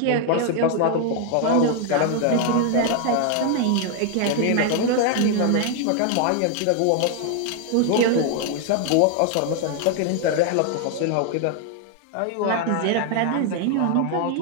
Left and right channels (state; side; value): different; both; correlation 0.00